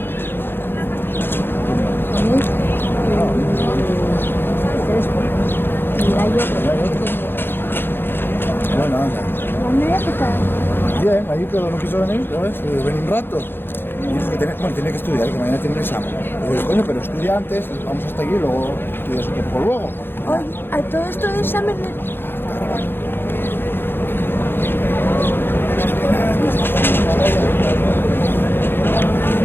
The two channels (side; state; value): right; late; 0.10 ms